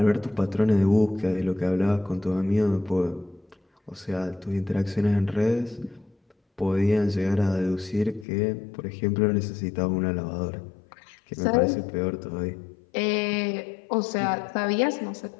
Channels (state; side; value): drops out; right; at 8.2 s